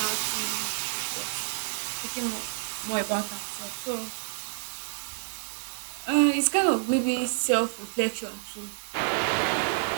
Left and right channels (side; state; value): left; silent; digital silence